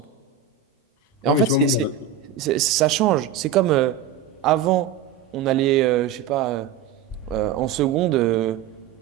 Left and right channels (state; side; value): quieter; left; 8.1 dB